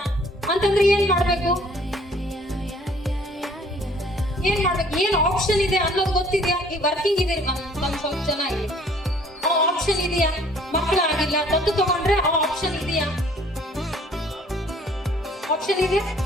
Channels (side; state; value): both; normal; correlation 0.57